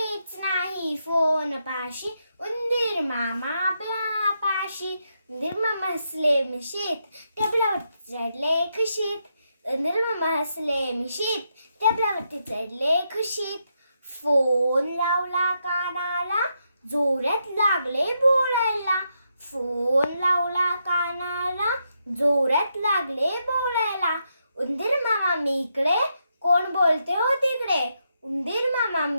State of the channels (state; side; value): inverted; both; correlation -0.81